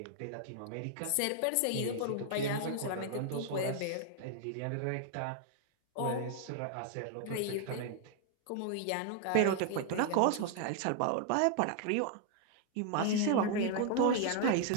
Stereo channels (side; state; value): both; different; correlation 0.00